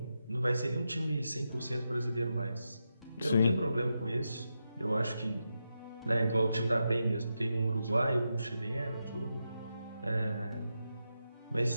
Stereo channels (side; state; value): both; inverted; correlation -0.87